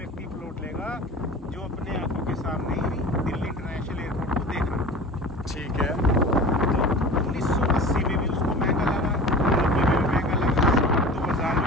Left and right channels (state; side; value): normal; both; correlation 0.37